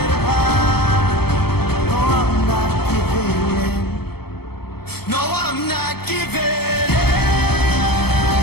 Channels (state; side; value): late; right; 0.96 ms